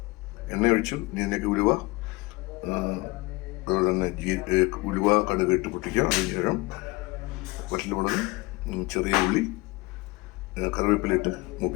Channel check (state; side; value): quieter; right; 23.6 dB